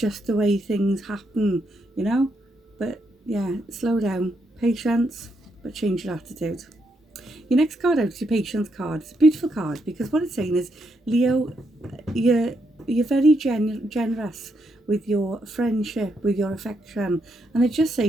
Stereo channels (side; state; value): both; normal; correlation 0.79